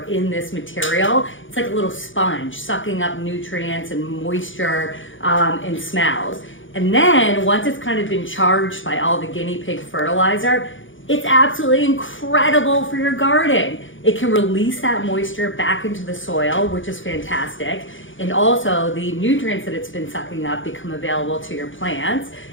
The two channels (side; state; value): right; late; 0.56 ms